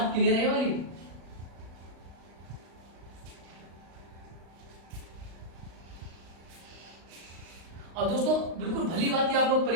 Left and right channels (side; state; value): left; late; 36 ms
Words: क्लियर है वाली? और दोस्तों बिल्कुल भली बात आप लोग